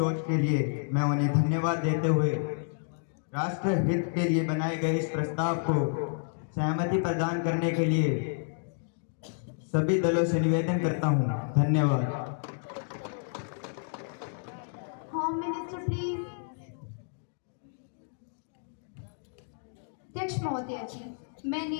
के लिए मैं उन्हें धन्यवाद देते हुए राष्ट्र हित के लिए बनाए गए इस प्रस्ताव को सहमति प्रदान करने के लिए सभी दलों से निवेदन करता हूं। धन्यवाद। Home minister please. अध्यक्ष महोदय जी,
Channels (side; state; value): right; silent; digital silence